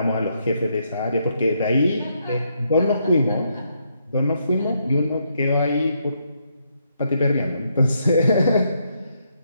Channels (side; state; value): both; inverted; correlation -0.76